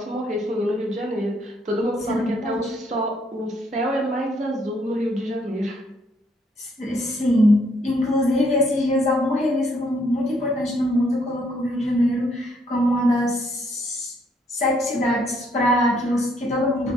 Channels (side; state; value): both; normal; correlation 0.69